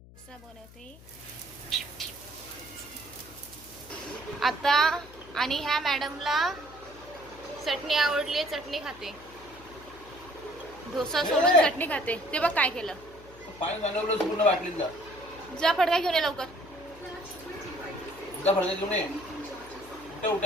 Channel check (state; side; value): noise; left; hum, 21 dB below the sound